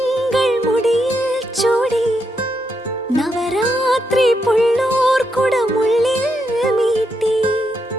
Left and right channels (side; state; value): both; normal; correlation 0.81